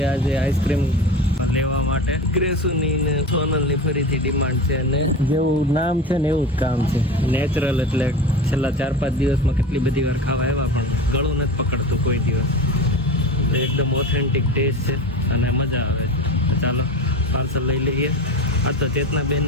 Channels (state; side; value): normal; both; correlation 0.29